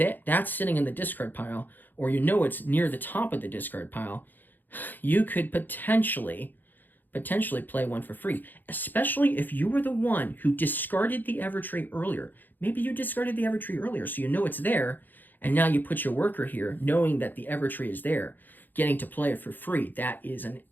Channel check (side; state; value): right; late; 0.088 ms